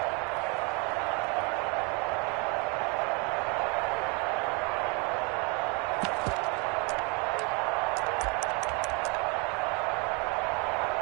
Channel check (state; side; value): quieter; left; 31.9 dB